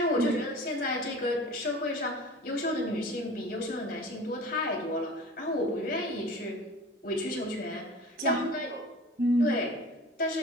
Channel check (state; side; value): normal; both; correlation 0.40